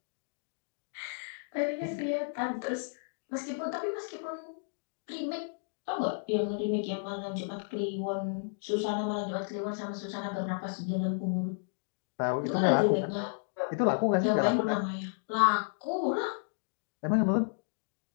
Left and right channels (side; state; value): right; silent; digital silence